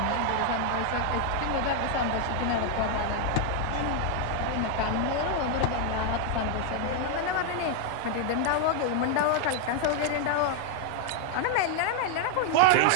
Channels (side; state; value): both; different; correlation 0.00